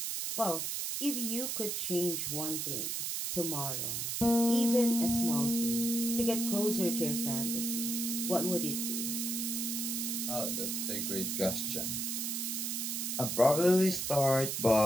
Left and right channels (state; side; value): noise; right; hiss, 2 dB below the sound